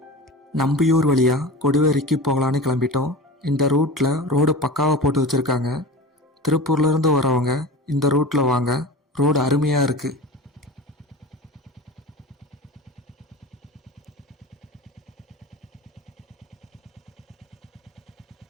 நம்பியூர் வழியாக கொடுவரைக்கு போகலான்னு கிளம்பிட்டோம். இந்த ரூட்டில் ரோடு பக்காவாக போட்டு வச்சுருக்காங்க. திருப்பூர்லேருந்து வரவங்க இந்த ரூட்டில் வாங்க, ரோடு அருமையாக இருக்குது.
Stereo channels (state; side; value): normal; both; correlation 0.32